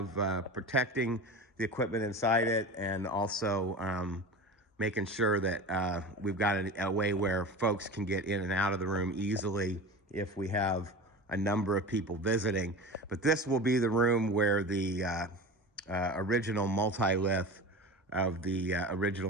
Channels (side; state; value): both; normal; correlation 0.31